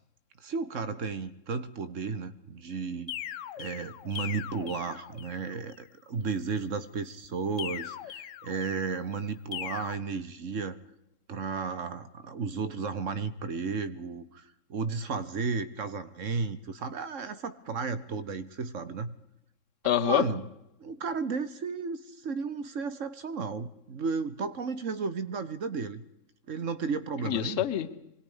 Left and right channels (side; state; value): left; late; 3.7 ms